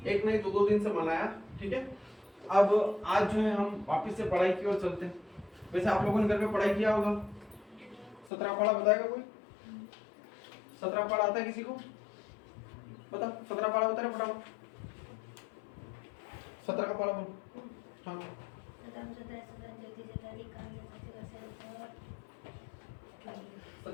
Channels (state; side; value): drops out; right; at 8.3 s